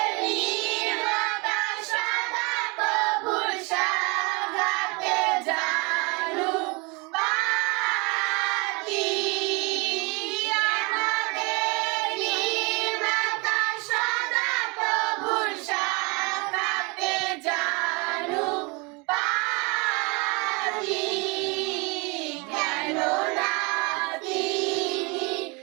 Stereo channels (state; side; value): quieter; left; 28.9 dB